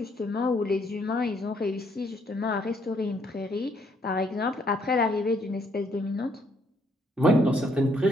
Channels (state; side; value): normal; both; correlation 0.69